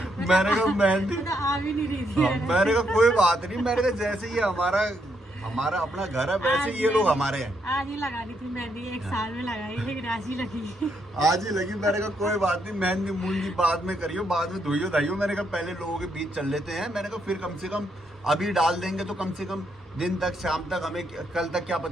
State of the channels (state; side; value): normal; both; correlation 0.76